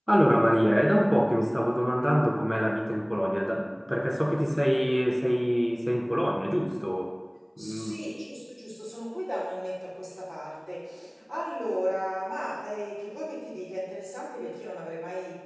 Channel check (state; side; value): identical; both; correlation 1.00